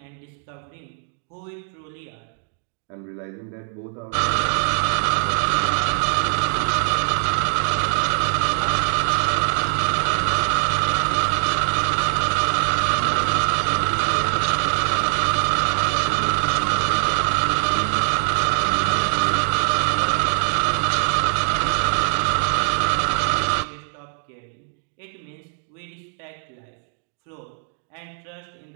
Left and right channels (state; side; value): silent; left; 64 dB below the other